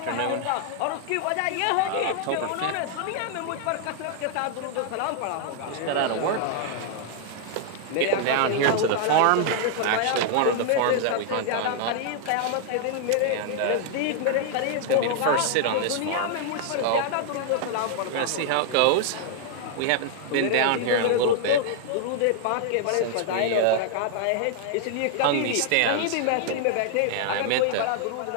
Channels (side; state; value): both; different; correlation -0.01